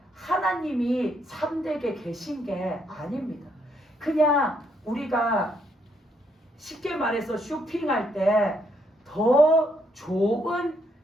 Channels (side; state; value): both; normal; correlation 0.73